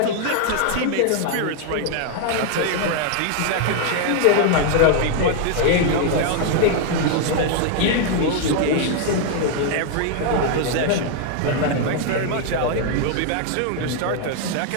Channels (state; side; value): different; both; correlation 0.00